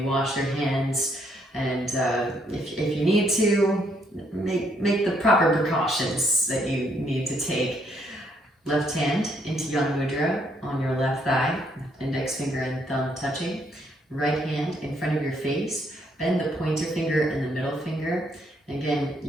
wash your hands, and if you need to, make the proper precautions that you need to take. Left hand into Yang Mudra on your left thigh, index finger and thumb touching. Right hand in front of your face. Bend the pointer finger and the middle finger. Again,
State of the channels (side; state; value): both; normal; correlation 0.71